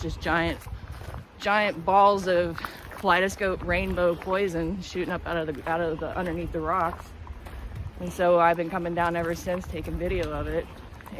just giant balls of kaleidoscope rainbow poison shooting up out of the underneath the rocks. And so I've been coming down ever since, taking video of it.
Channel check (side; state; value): both; identical; correlation 1.00